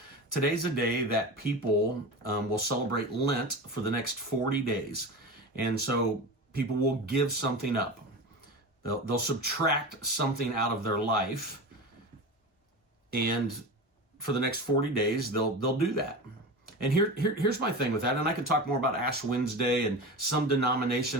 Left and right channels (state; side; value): normal; both; correlation 0.28